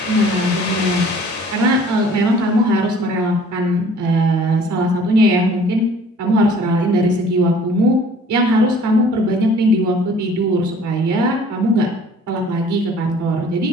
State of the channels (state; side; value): normal; both; correlation 0.52